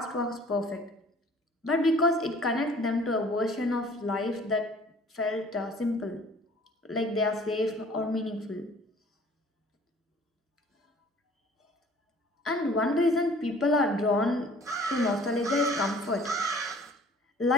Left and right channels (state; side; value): normal; both; correlation 0.52